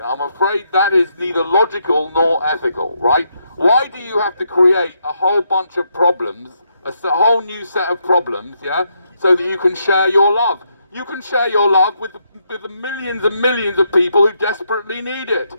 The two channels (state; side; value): inverted; both; correlation -0.78